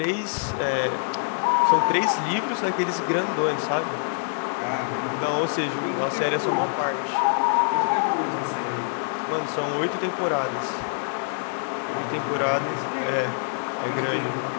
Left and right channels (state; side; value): silent; right; digital silence